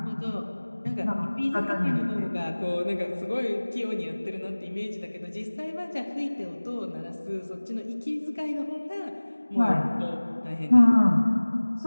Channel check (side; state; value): both; inverted; correlation -1.00